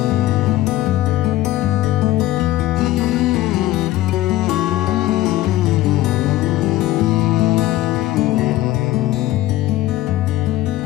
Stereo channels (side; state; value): right; quieter; 15.6 dB